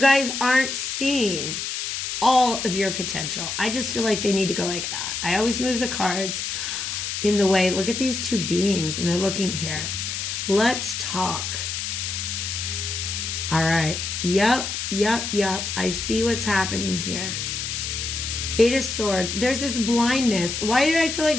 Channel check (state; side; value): noise; left; hiss, 4 dB below the sound